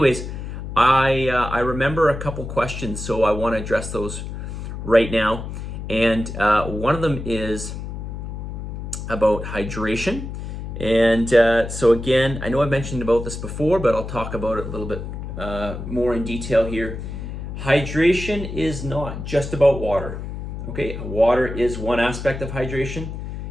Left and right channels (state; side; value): noise; left; hum, 7 dB below the sound